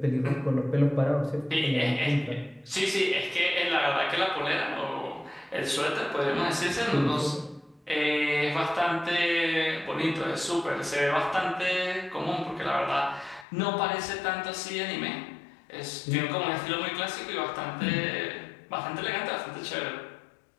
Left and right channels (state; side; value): drops out; right; at 13.5 s